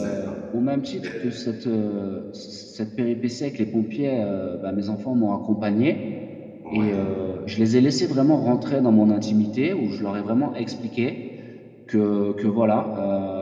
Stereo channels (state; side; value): identical; both; correlation 1.00